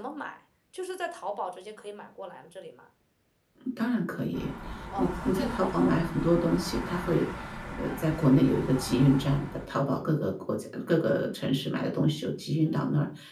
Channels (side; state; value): both; identical; correlation 1.00